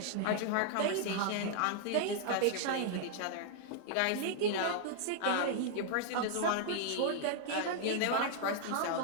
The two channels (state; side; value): different; both; correlation -0.01